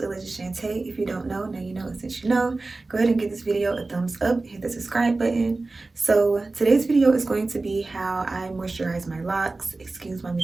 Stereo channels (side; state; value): left; quieter; 3.4 dB